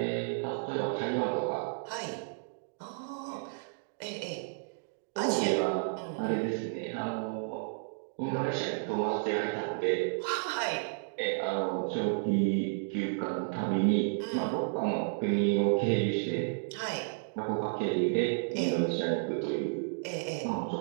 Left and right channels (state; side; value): silent; left; digital silence